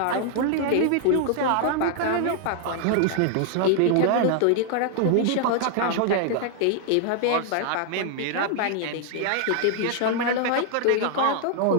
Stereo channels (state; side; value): different; both; correlation 0.00